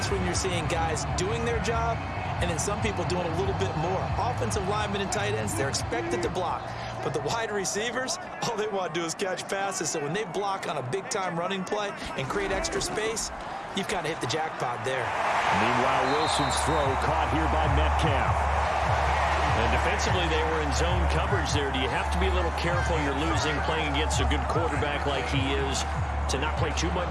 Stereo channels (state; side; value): identical; both; correlation 1.00